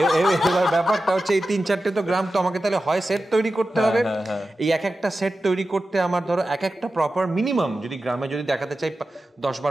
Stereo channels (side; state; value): both; normal; correlation 0.93